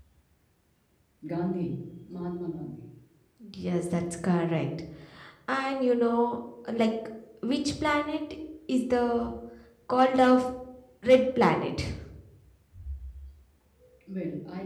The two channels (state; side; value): identical; both; correlation 1.00